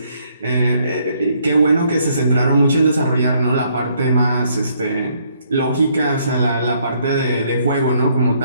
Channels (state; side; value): inverted; both; correlation -0.69